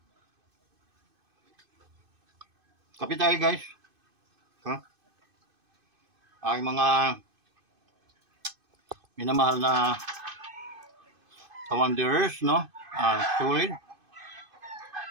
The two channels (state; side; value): late; left; 2.5 ms